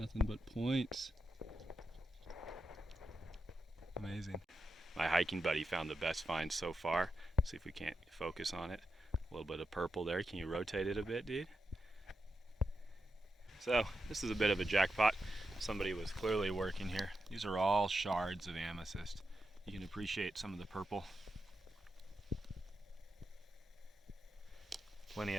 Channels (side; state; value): both; normal; correlation 0.88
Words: but points. Amazing. My hiking buddy found the best find so far. See if we can't focus on it. A little bit of purple there. Can you rotate it a bit, dude? So this is a bit of a jackpot. Somebody was clearly working here. These are all shards of amethyst. You can appreciate some of the purple. Plenty